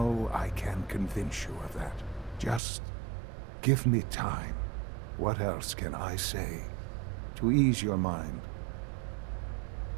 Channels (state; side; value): drops out; left; at 2.6 s